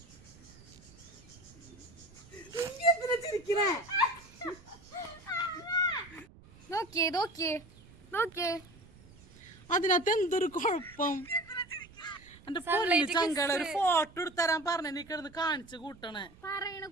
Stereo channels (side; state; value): right; noise; rumble, 22 dB below the sound